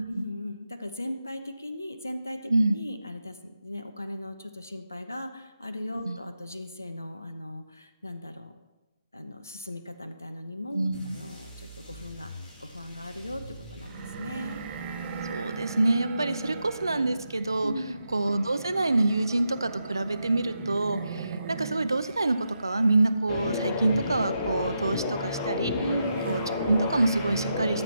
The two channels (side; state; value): both; inverted; correlation -0.85